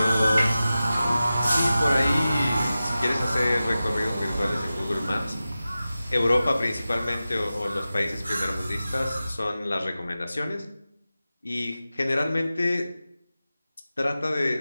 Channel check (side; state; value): both; inverted; correlation -0.94